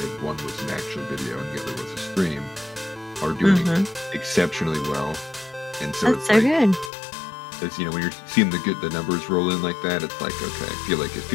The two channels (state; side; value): drops out; right; at 6.9 s